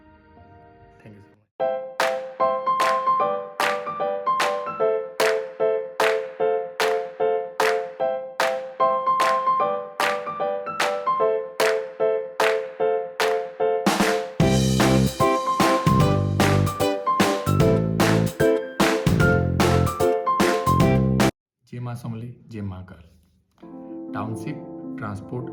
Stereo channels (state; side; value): identical; both; correlation 1.00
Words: Thank you so much. जय माँ समले जय माँ काल टाउनशिप ट्रांसपोर्ट